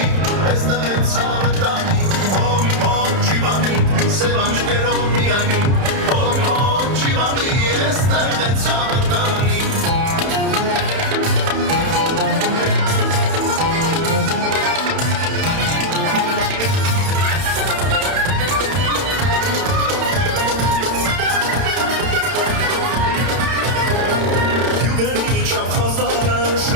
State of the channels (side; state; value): left; late; 31 ms